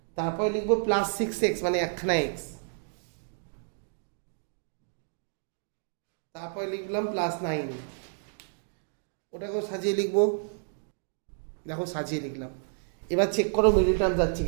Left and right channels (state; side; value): silent; left; digital silence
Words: তারপরে লিখবো প্লাস 6x মানে একখানা এক্স, তারপরে লিখলাম প্লাস 9, ওটাকেও সাজিয়ে লিখবো। দেখো সাজিয়ে লিখলাম। এবার চেক করো মিডিল টার্ম যাচ্ছে